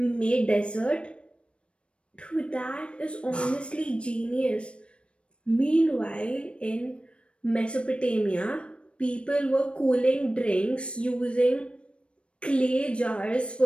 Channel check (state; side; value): late; right; 0.059 ms